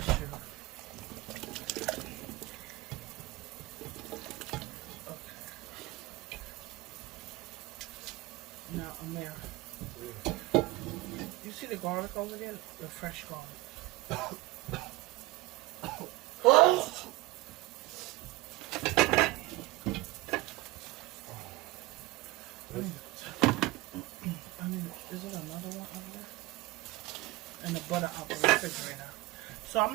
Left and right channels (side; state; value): left; quieter; 19.7 dB